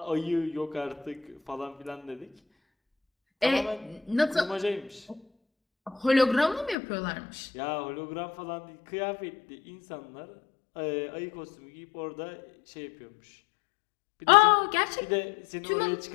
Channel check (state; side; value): drops out; right; at 6.8 s